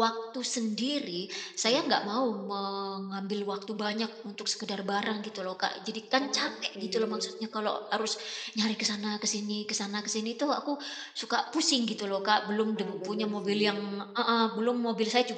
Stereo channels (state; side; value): identical; both; correlation 1.00